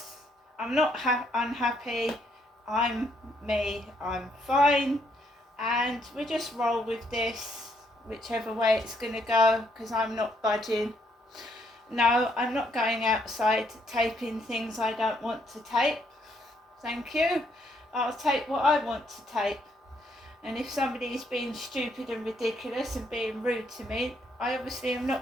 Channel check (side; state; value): both; normal; correlation 0.71